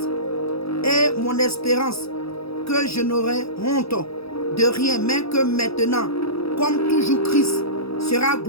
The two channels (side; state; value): right; late; 0.77 ms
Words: et mon espérance, que je n'aurai honte de rien, mais que maintenant, comme toujours Christ sera